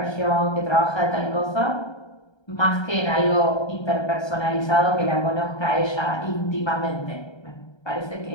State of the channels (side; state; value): right; late; 1.3 ms